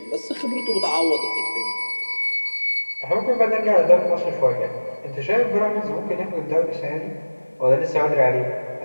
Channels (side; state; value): both; inverted; correlation -1.00